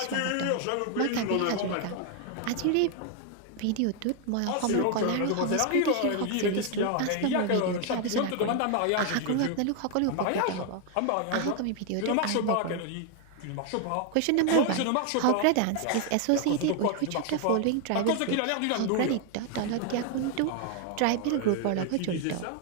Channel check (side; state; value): both; different; correlation 0.00